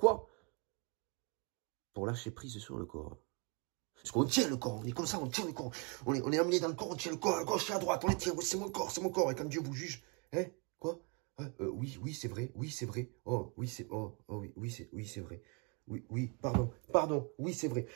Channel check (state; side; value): quieter; left; 33.6 dB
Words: Pour lâcher prise sur le corps. Parce qu'on tient le corps, on est comme ça, on tient le corps. On est amené dans le corps, on tient le corps, à gauche et à droite, on les tient, c'est mon corps, c'est mon corps. Et quand Dieu vous juge, hein, quoi? Oui, c'est vrai, oui, c'est vrai. Oh, oui, c'est, oui, c'est vrai. Oui, pardon, oui, c'est vrai.